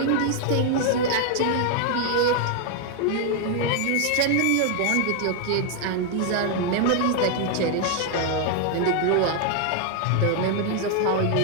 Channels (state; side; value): different; both; correlation 0.00